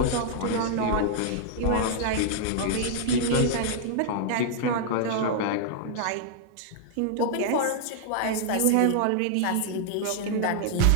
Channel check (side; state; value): both; different; correlation -0.01